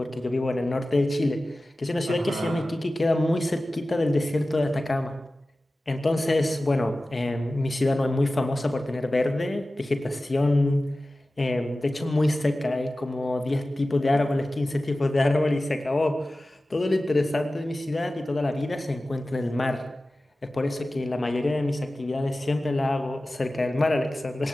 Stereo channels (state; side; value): normal; both; correlation 0.96